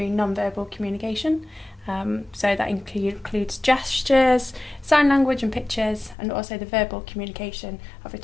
non-verbal communication. So that includes gestures, sign language and pictures, and also the verbal communication of a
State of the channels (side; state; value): right; drops out; at 6.2 s